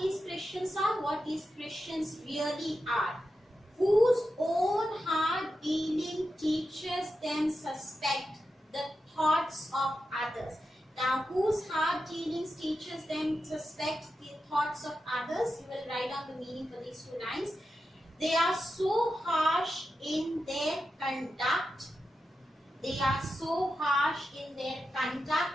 Christians really are, whose own hard dealing teaches them suspect the thoughts of others. Now, whose hard dealings teaches them suspect the thoughts of others? You will write down the meaning for these 2 lines. They are so harsh in their conduct. They are so harsh in their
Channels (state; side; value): normal; both; correlation 0.89